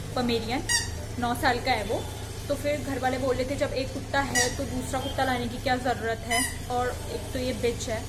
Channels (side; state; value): both; identical; correlation 1.00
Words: पमेरियन, 9 साल का है वो। तो फिर घर वाले बोल रहे थे जब एक कुत्ता है तो दूसरा कुत्ता लाने की क्या ज़रूरत है, और एक तो ये बिच है,